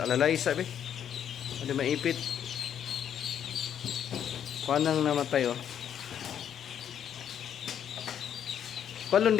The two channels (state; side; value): quieter; right; 9.2 dB